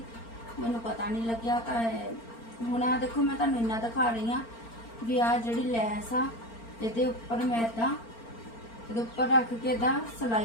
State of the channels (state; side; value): late; right; 4.4 ms